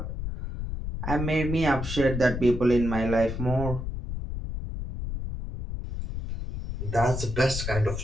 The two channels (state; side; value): noise; left; rumble, 5 dB below the sound